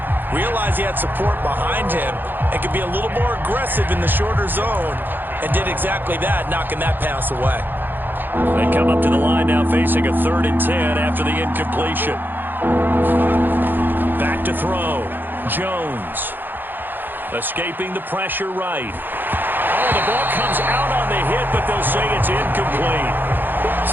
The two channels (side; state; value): left; late; 0.093 ms